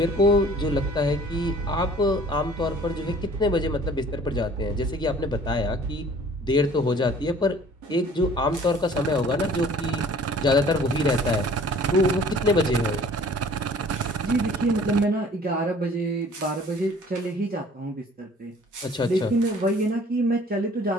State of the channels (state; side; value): normal; both; correlation 0.51